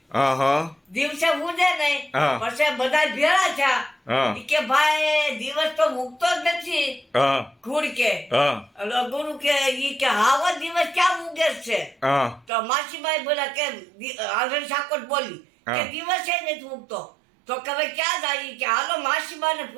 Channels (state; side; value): drops out; left; at 12.5 s